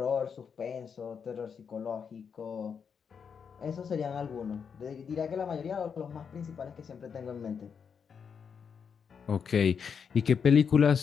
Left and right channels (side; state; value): right; quieter; 6.6 dB